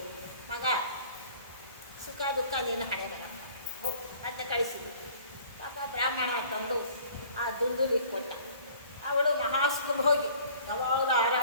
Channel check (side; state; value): both; inverted; correlation -0.52